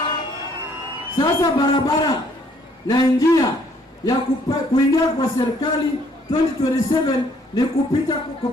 Sasa barabara na njia ya kuingia kwa serikali 2027 ni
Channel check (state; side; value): normal; both; correlation 0.64